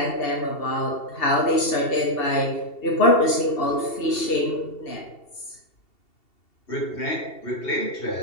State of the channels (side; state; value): right; late; 2.7 ms